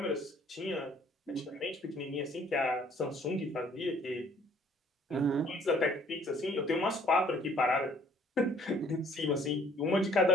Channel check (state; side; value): normal; both; correlation 0.59